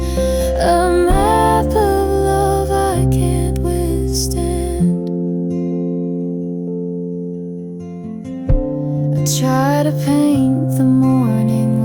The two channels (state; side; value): identical; both; correlation 1.00